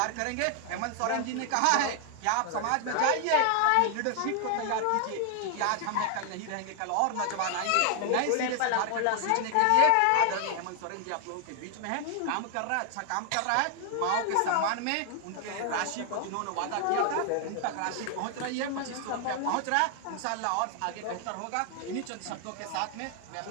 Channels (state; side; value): different; both; correlation 0.00